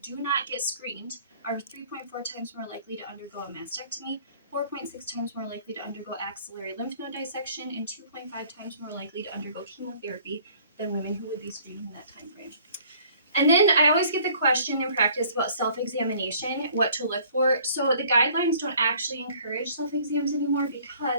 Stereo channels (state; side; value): inverted; both; correlation -0.56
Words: not get screened are 3.4 times more likely to undergo a mastectomy, 4.6 times more likely to undergo axillary lymph node dissection, and 2.5 times more likely to undergo chemotherapy than women who would be screened in that time frame. And then I always get the question in practice about self-examination, what to look for. So the guidelines don't actually encourage self-exams anymore